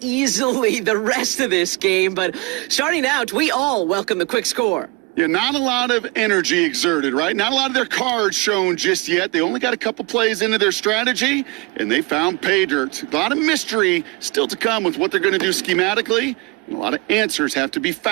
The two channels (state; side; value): quieter; left; 24.4 dB